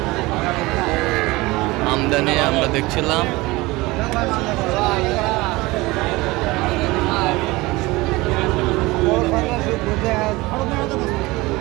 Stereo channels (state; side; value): quieter; left; 21.5 dB